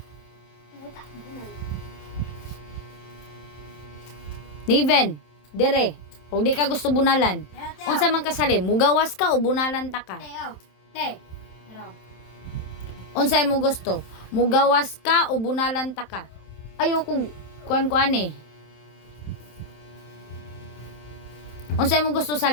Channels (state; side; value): late; right; 27 ms